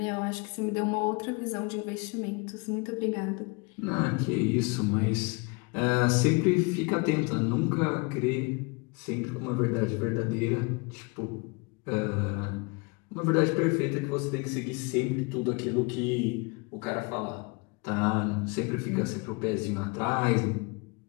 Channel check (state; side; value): quieter; right; 29.7 dB